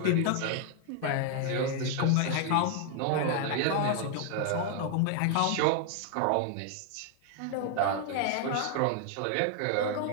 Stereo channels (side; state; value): both; different; correlation 0.00